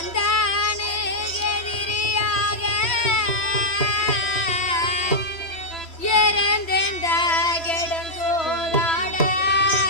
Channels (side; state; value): right; late; 3.1 ms